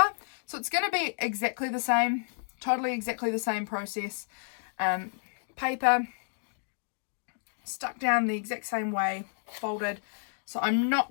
So it's going to be exactly the same, totally exactly the same process. Paper stuck down the exact same way, folded. So I'm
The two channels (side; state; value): right; silent; digital silence